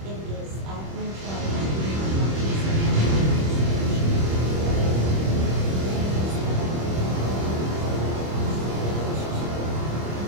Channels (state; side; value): late; left; 26 ms